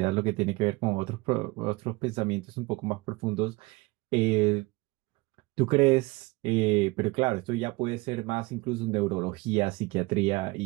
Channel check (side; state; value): left; quieter; 23.4 dB